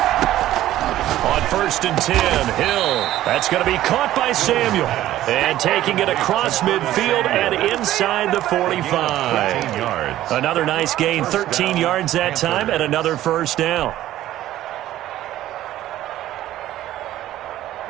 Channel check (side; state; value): left; quieter; 13.8 dB